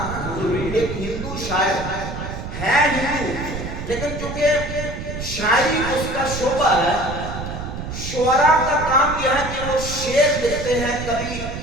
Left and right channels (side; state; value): right; noise; rumble, 7 dB below the sound